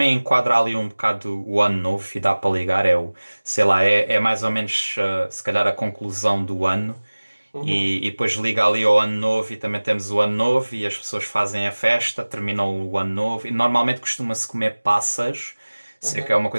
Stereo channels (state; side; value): inverted; both; correlation -1.00